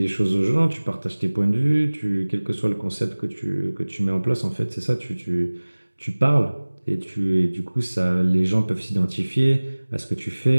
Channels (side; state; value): both; inverted; correlation -1.00